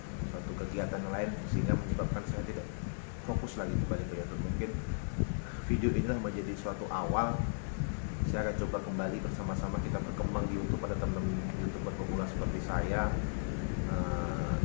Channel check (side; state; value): right; silent; 54 dB below the other